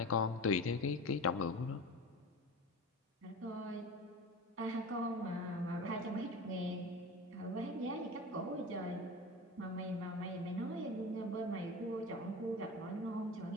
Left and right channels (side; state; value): both; normal; correlation 0.31